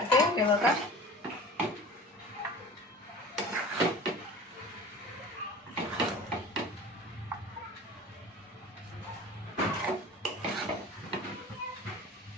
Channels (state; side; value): normal; both; correlation 0.40